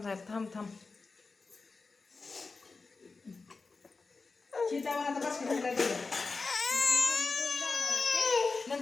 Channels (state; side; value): quieter; right; 4.1 dB